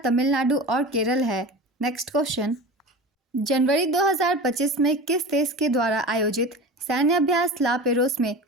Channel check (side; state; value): both; normal; correlation 0.32